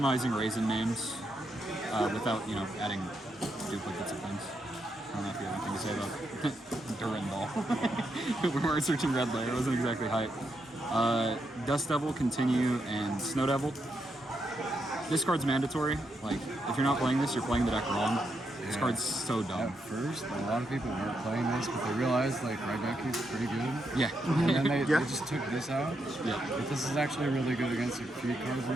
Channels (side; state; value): both; normal; correlation 0.81